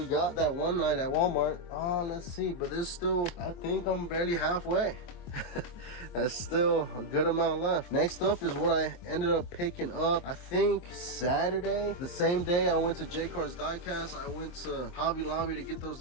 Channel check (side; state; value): right; late; 23 ms